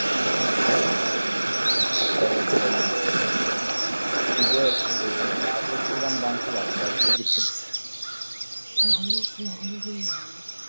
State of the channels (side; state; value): both; inverted; correlation -1.00